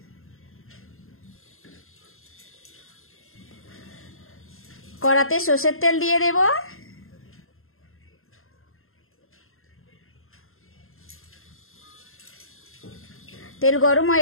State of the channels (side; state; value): right; late; 0.61 ms